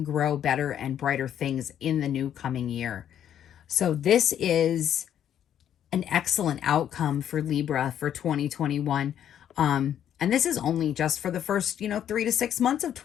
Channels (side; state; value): right; quieter; 10.0 dB